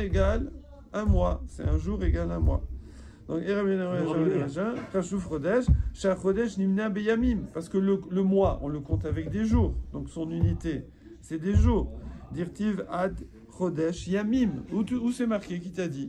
égale un mois. C'est un jour égale un mois. Donc Chashuv Chodesh, Shach Chodesh Nimna Beyamim, parce que le mois, on le compte avec des jours. Donc son unité, c'est des jours. Dirtiv Ad Chodesh Yamim. Où c'est marqué? Qui t'a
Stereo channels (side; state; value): both; identical; correlation 1.00